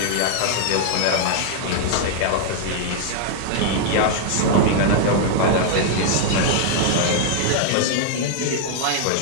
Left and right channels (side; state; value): both; different; correlation 0.00